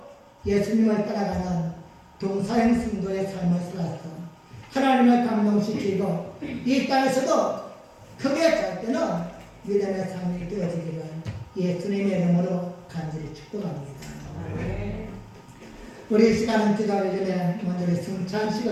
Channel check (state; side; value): identical; both; correlation 1.00